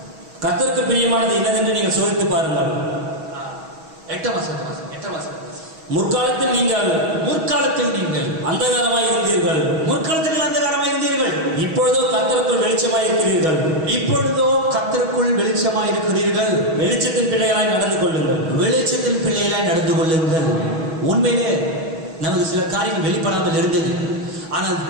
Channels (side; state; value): left; late; 6.2 ms